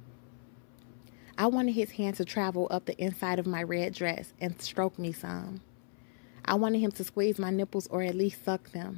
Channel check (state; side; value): silent; right; 55 dB below the other